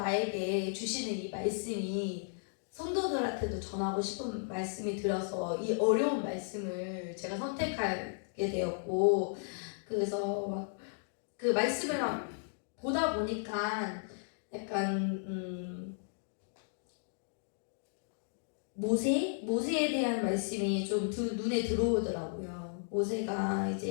주시는 이 말씀이 성도들한테도 전하고 싶은 말씀이 들어서 이 어려운 말씀을 제가 선택하게 되었고 그래서 막 그 말씀을 막 보다 보니까 약간 모세에 대한 말씀이 좀 눈에 들어오더라고요. 모세가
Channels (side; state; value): right; silent; digital silence